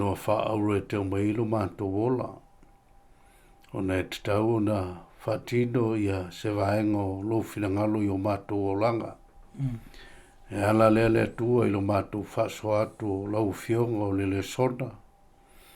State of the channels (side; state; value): both; identical; correlation 1.00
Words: wha aure te o mailo mantu wola. O na e tatau na whatino ia se vaengo lo finangalo I o matu wolanga. E ala le tua I lo matu whaso atu lau fionga o le Lesona.